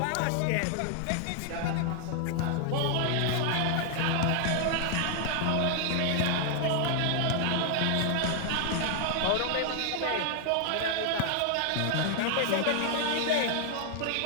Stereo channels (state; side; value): different; both; correlation 0.00